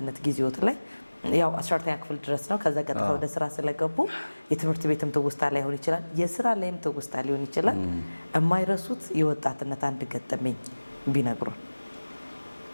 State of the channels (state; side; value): inverted; both; correlation -1.00